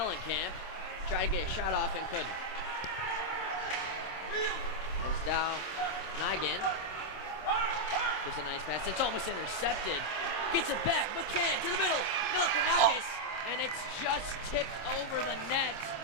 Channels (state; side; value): late; right; 26 ms